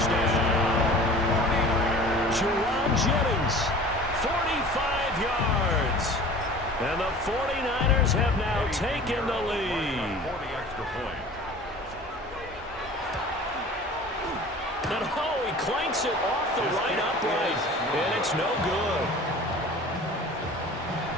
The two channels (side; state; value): both; normal; correlation 0.42